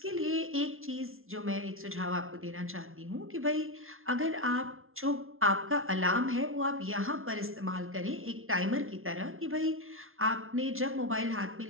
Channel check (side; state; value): left; late; 0.61 ms